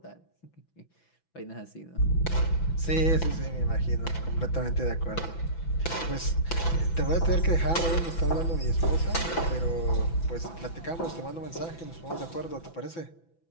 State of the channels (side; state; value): right; late; 6.0 ms